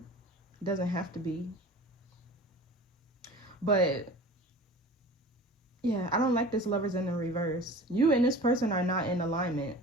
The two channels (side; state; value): both; normal; correlation 0.40